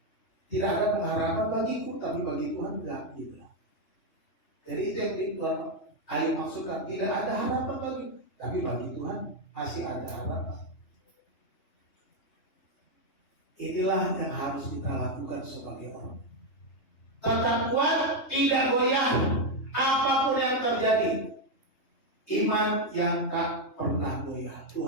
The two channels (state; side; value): late; right; 3.2 ms